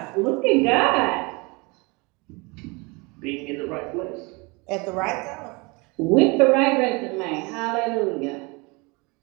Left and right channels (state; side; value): quieter; left; 27.5 dB